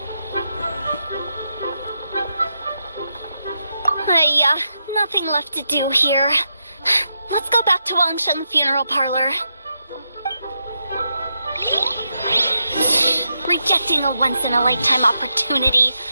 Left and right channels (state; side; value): inverted; both; correlation -0.84